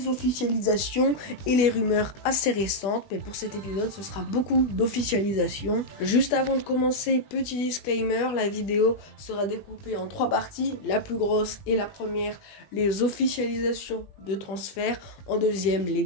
officialisations et les rumeurs assez récentes, mais pour cet épisode ce sera beaucoup d'officialisation. Juste avant de commencer, petit disclaimer, la vidéo sera découpée en 3 parties. La plus grosse et la première, les officialisations de transfert. En deuxième, les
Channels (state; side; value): late; right; 21 ms